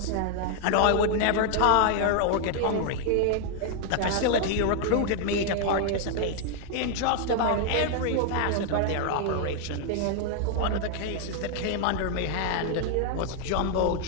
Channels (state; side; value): different; both; correlation 0.00